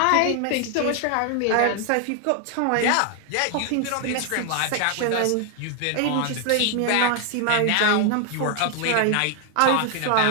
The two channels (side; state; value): both; different; correlation 0.00